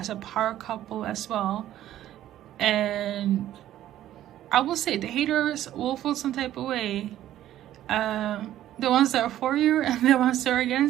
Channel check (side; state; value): left; quieter; 12.8 dB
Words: a power couple as well, and I will say the haters will feel some type of way. The ones that are for you and the ones that are